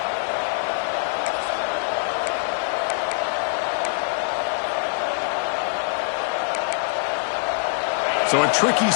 So a tricky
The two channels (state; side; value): silent; right; digital silence